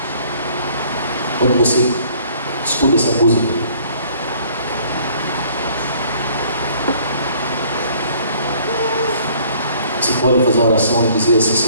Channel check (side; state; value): both; inverted; correlation -0.58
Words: Quando você escuta essa música, você pode fazer uma oração e dizer assim: